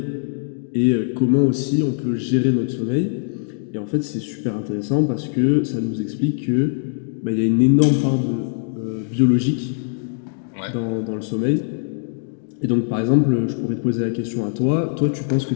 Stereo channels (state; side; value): silent; right; digital silence